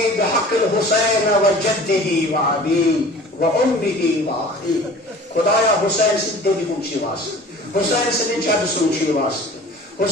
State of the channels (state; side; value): normal; both; correlation 0.44